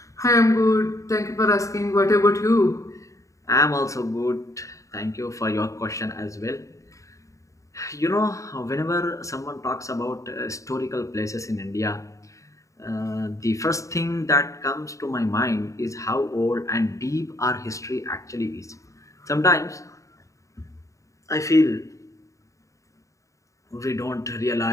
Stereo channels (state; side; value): late; right; 0.15 ms